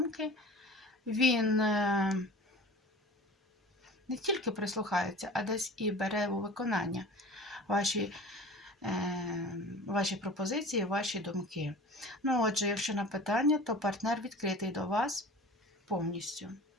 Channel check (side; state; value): both; normal; correlation 0.39